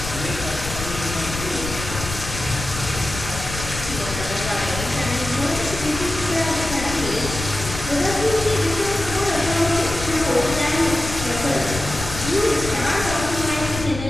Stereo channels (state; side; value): noise; left; rumble, 8 dB below the sound